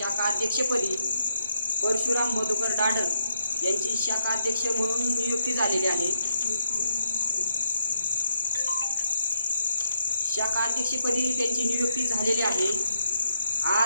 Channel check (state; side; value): inverted; both; correlation -0.78